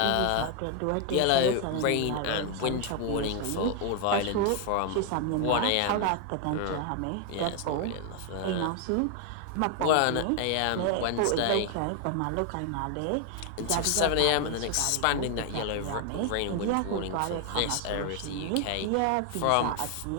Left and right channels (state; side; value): different; both; correlation 0.00